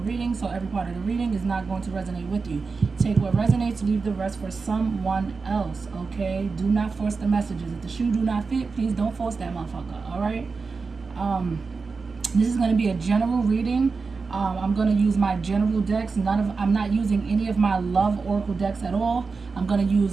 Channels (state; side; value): quieter; left; 4.5 dB